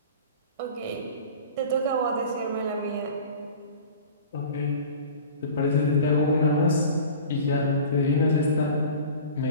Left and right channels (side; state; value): both; inverted; correlation -0.40